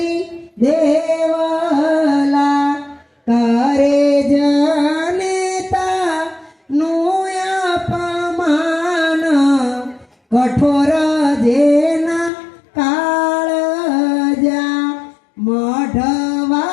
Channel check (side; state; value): right; drops out; at 12.3 s